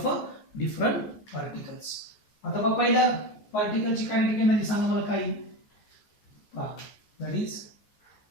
a different particles. आता पहा पहिल्या पार्टिकलची कायनेटिक एनर्जी सांगा मला काय. That is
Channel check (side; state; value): right; late; 14 ms